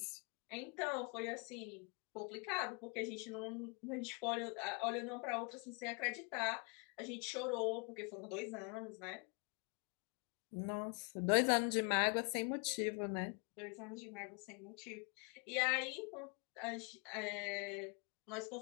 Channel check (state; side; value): quieter; right; 34.8 dB